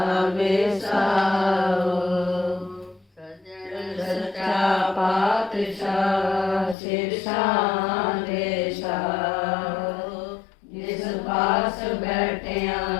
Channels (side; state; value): right; drops out; at 6.8 s